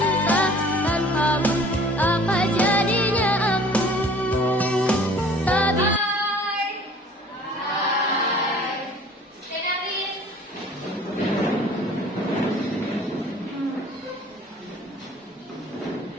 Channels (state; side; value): normal; both; correlation 0.51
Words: tanpamu apa jadinya aku? Tapi